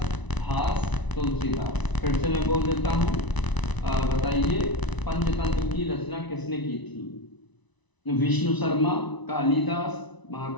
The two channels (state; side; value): late; right; 1.0 ms